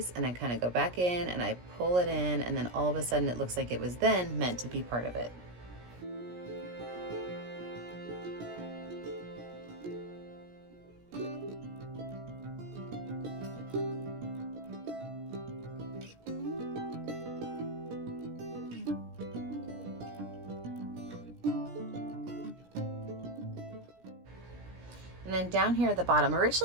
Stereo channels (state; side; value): late; left; 17 ms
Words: and I kind of go back in and I pull it in, and then all of a sudden it looks like it was then meant to be part of it. And then down here at the bottom,